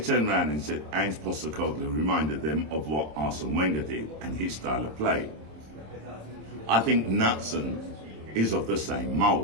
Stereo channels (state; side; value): late; left; 26 ms